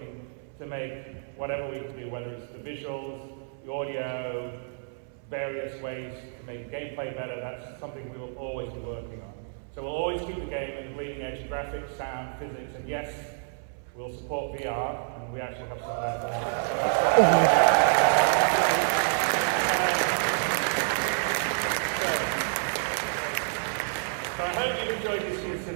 to make whatever we can do, whether it's the visuals, the audio, various ways to make gameplay better. That's something we will always be working on. So we'll always keep the game at the bleeding edge, graphics, sound, physics, and yes, we'll support VR, and we actually have some of that. So I hope you enjoyed this year's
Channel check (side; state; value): left; silent; 59 dB below the other